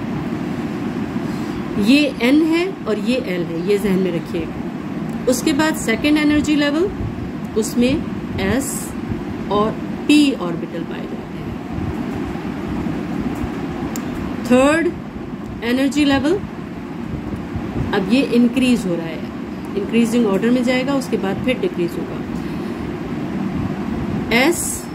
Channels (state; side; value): identical; both; correlation 1.00